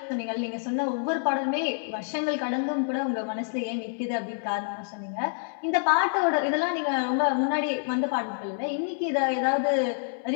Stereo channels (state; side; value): silent; right; 60 dB below the other